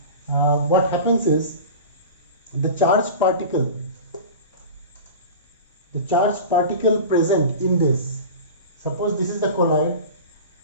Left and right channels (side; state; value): both; inverted; correlation -0.34